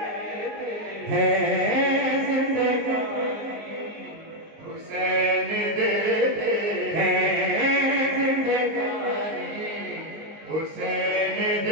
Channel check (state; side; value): late; left; 19 ms